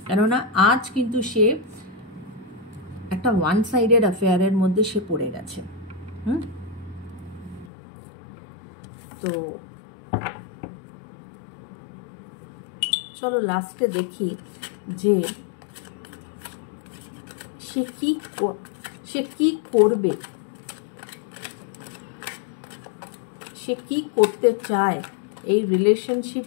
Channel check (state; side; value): drops out; right; at 7.7 s